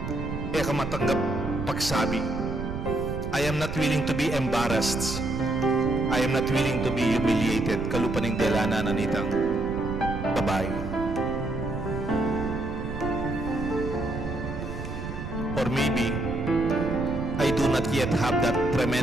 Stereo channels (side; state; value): right; noise; rumble, 7 dB below the sound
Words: kamatanggap pagsabi. I am not willing to be embarrassed. I am not willing to be humiliated. Kalupaning delana na nitang babae. Or maybe, I do not yet have that